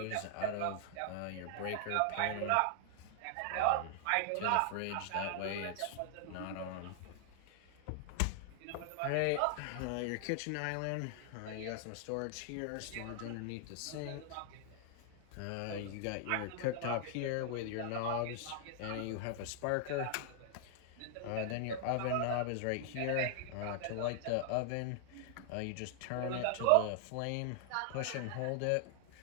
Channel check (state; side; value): different; both; correlation 0.00